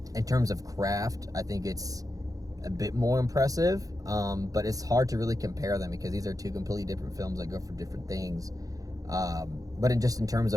in terms of craft, I think it's a bit more impressive, but it's hard to really compare them, because these are two completely different films that go for different things. But in terms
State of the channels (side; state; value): left; late; 0.17 ms